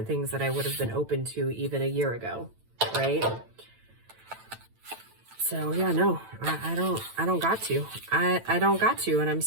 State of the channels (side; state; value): left; late; 9.0 ms